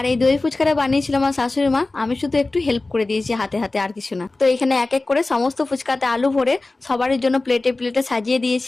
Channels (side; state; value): right; quieter; 3.2 dB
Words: এই দই ফুচকাটা বানিয়েছিল আমার শাশুড়ি মা, আমি শুধু একটু হেল্প করে দিয়েছি হাতে হাতে, আর কিছু না। তো এখানে এক এক করে সমস্ত ফুচকাতে আলু ভরে সবারই জন্য প্লেটে প্লেটে সাজিয়ে